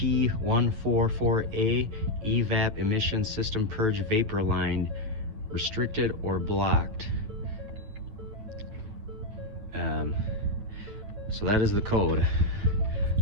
evap emission system purge vapor line, restricted or blocked. So that is the code.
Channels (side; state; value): left; late; 9.5 ms